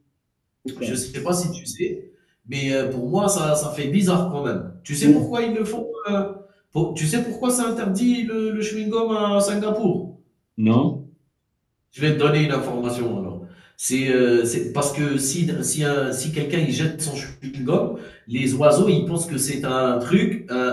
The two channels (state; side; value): identical; both; correlation 1.00